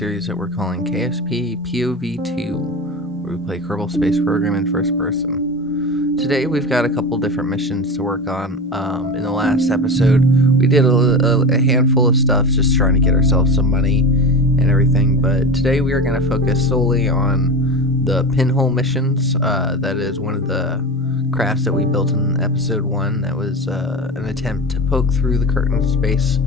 that we're calling KSP POV2, where we play Kerbal Space Program in first person. Today, we've got a couple different missions to work on. In the last episode, we did a handful of stuff just trying to get ourselves some money and everything, but today we are going to focus solely on the Pinhole missions. That is one of the crafts that we built in episode 1 that was an attempt to poke through the curtain of space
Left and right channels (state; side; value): normal; both; correlation 0.26